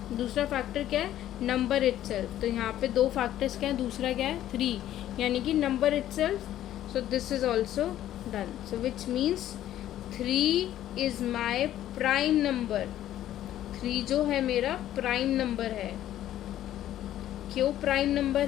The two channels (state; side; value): quieter; right; 12.5 dB